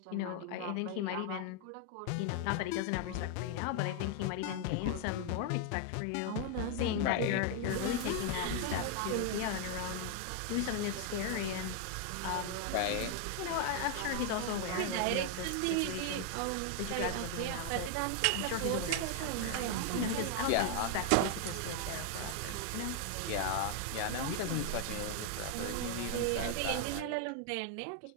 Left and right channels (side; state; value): both; different; correlation 0.00